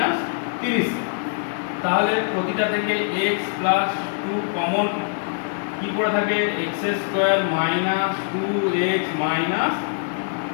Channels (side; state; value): right; silent; digital silence